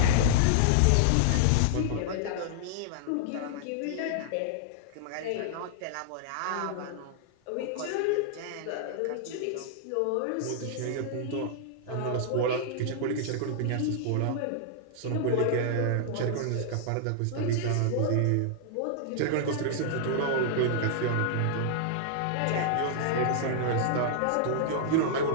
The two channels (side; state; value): both; different; correlation -0.01